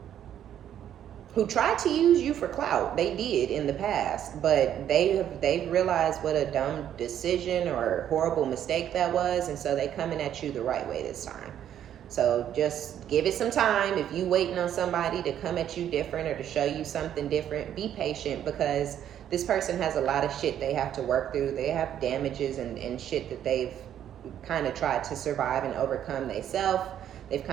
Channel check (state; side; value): quieter; left; 10.3 dB